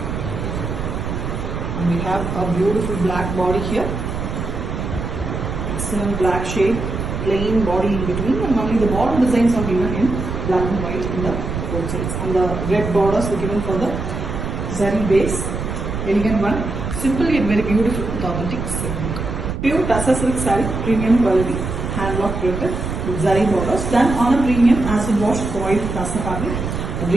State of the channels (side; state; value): right; noise; rumble, 4 dB below the sound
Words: And we have a beautiful black body here. Excellent black shade, plain body in between, and only the border designs are given in black and white in the both sides. And the red borders are given for the zari base. Elegant one, simple yet very beautiful with authentic silk. Pure tussar silk saree, premium quality, hand block printed with zari borders done on a premium acid washed boiled tussar fabric. A